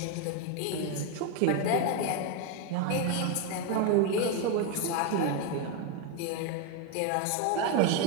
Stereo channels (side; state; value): both; different; correlation 0.02